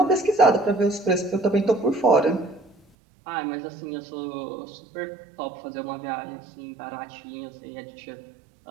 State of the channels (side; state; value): left; drops out; at 2.8 s